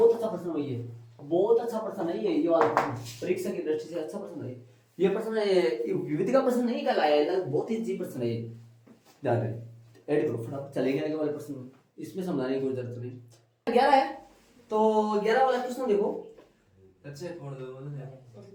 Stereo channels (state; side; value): identical; both; correlation 1.00